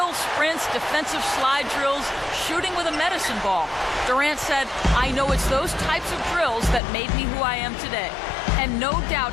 sprints, defensive slide drills, shooting with a medicine ball. Durant said, "I know it's those types of drills that made me who I am today." And no doubt,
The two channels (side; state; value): right; drops out; at 6.8 s